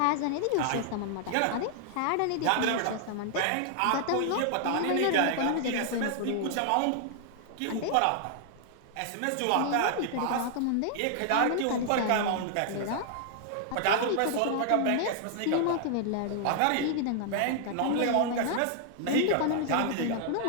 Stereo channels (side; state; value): both; different; correlation 0.00